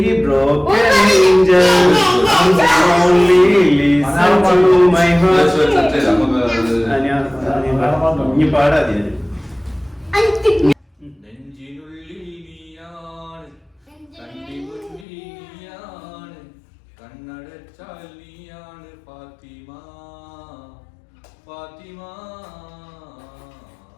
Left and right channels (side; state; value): right; drops out; at 15.1 s